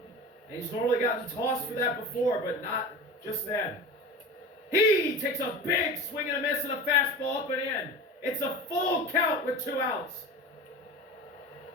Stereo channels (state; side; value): normal; both; correlation 0.32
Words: And he's normally gotten tossed for that before, but not just then. He takes a big swing and a miss and a fastball up and in. It's a full count with 2 outs.